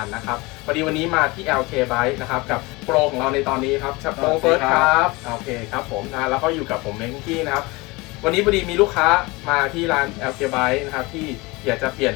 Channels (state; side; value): quieter; right; 23.8 dB